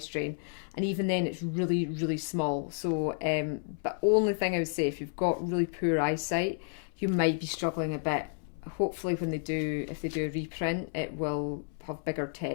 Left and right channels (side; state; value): right; silent; 57 dB below the other